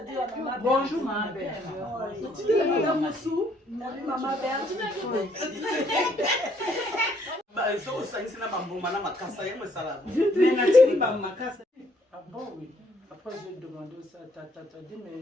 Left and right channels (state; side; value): normal; both; correlation 0.67